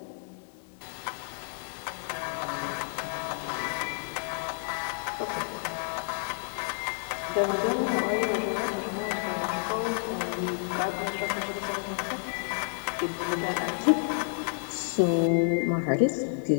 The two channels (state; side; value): silent; right; digital silence